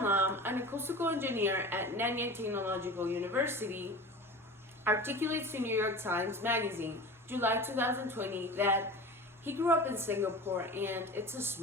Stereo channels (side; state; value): both; normal; correlation 0.34